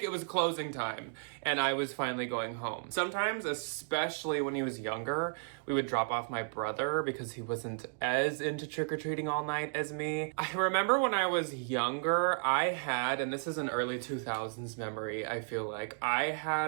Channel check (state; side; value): silent; left; digital silence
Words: it was closing time and I was finally going home. Sometimes, especially when he was younger, we would drop off my brother because he wasn't as into trick-or-treating all night as me. I remember when I was younger, I had, and this is an early 2000s memory, I feel like, I